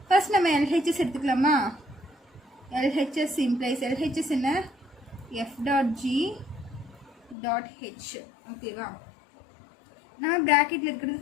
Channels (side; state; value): right; drops out; at 7.4 s